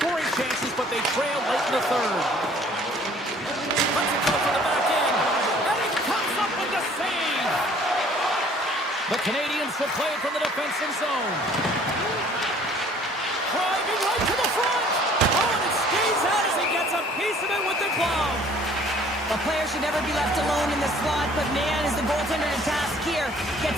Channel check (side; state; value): both; normal; correlation 0.55